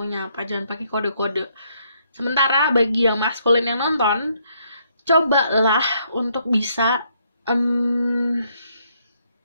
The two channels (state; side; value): inverted; both; correlation -0.72